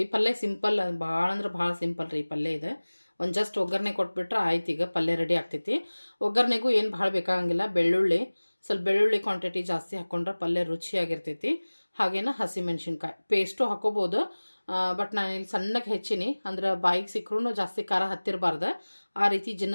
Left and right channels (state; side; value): inverted; both; correlation -1.00